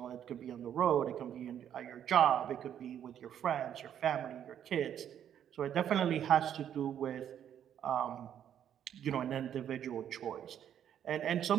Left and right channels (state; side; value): quieter; left; 9.7 dB